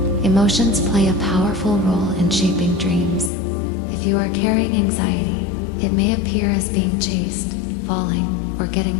Emotions play a powerful role in shaping dreams. If you are carrying anxiety, it may appear as being chased, falling, or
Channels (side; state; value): right; drops out; at 3.3 s